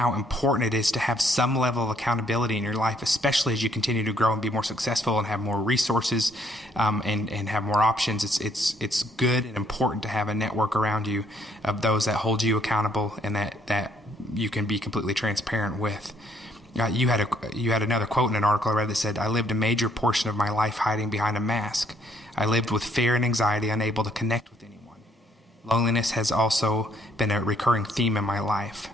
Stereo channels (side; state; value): both; normal; correlation 0.67